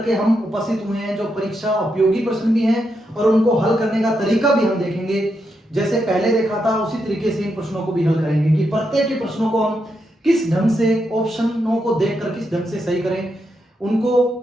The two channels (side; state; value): both; normal; correlation 0.83